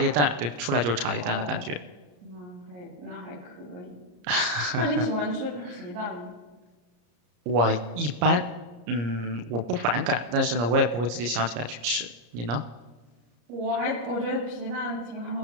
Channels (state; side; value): late; left; 34 ms